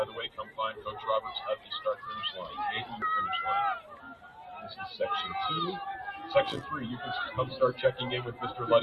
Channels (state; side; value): identical; both; correlation 1.00